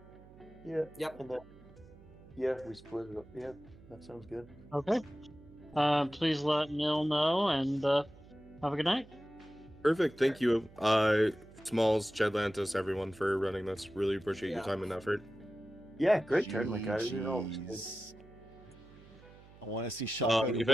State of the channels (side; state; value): right; noise; hum, 22 dB below the sound